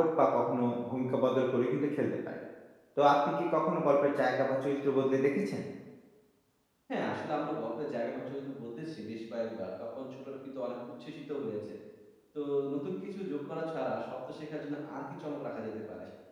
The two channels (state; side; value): identical; both; correlation 1.00